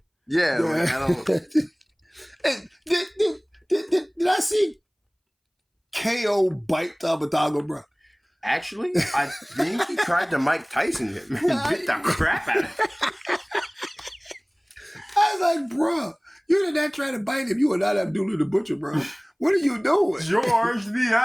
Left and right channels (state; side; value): identical; both; correlation 1.00